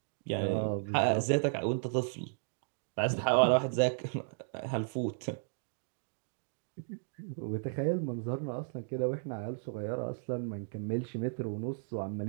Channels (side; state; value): left; silent; digital silence